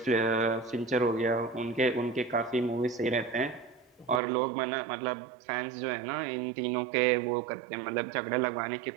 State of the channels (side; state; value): left; drops out; at 4.2 s